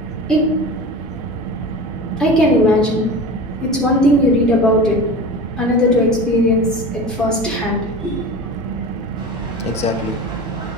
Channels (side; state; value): both; normal; correlation 0.32